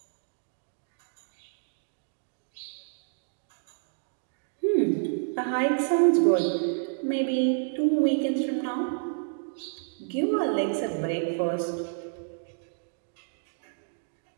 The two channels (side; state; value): left; silent; digital silence